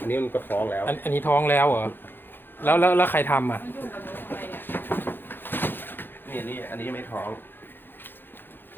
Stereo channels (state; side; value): late; right; 0.099 ms